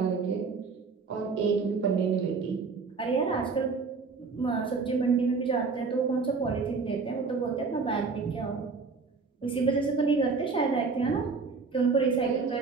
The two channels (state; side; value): quieter; left; 4.7 dB